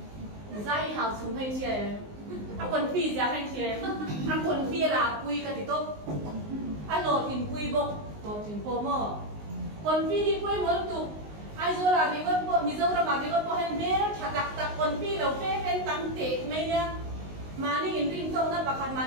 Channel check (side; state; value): left; late; 19 ms